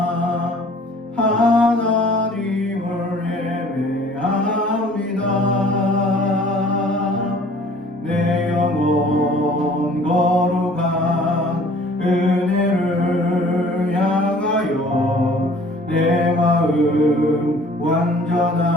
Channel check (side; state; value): both; normal; correlation 0.52